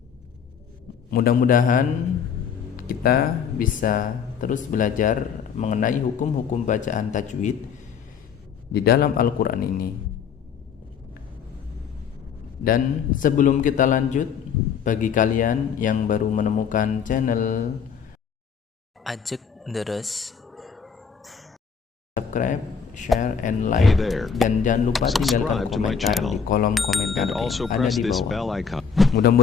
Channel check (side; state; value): right; quieter; 6.7 dB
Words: Mudah-mudahan kita bisa terus belajar mengenai hukum-hukum bacaan tajwid di dalam Al-Quran ini. Dan sebelum kita lanjut, bagi kalian yang baru menemukan channel Ajak Deres, subscribe, share, and like, dan jangan lupa tinggalkan komentar di kolom komentar yang ada di bawah.